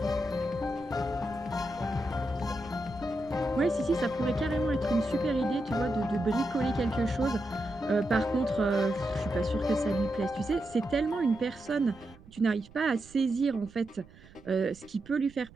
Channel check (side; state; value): right; noise; rumble, 22 dB below the sound